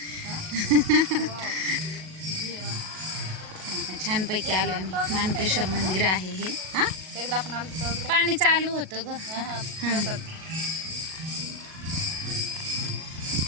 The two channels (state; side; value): late; left; 37 ms